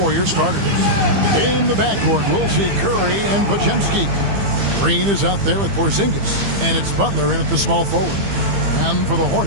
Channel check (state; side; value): late; left; 15 ms